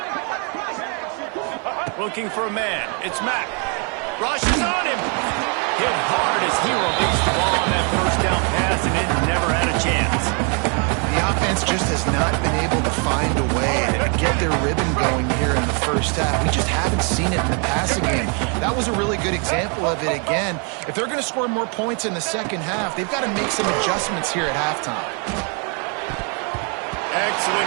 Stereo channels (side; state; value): left; quieter; 37.8 dB